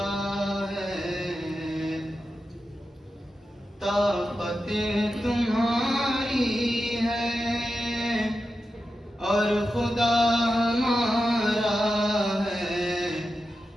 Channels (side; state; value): both; normal; correlation 0.90